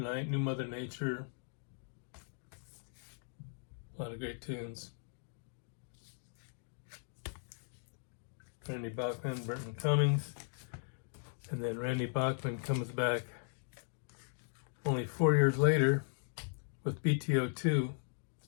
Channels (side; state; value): right; silent; digital silence